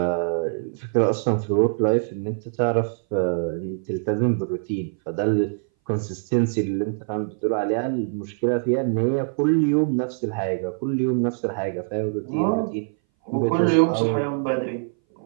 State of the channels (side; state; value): left; silent; 60 dB below the other